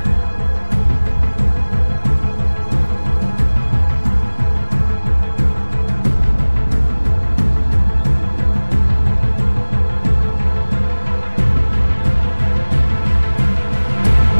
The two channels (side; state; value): both; inverted; correlation -1.00